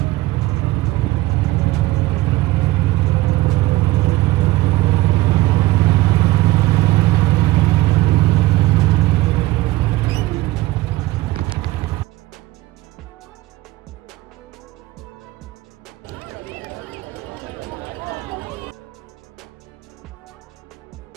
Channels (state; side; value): quieter; left; 18.1 dB